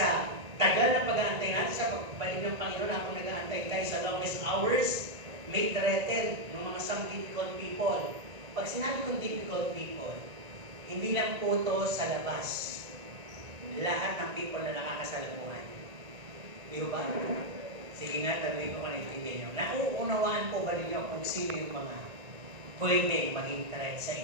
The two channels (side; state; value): left; late; 1.9 ms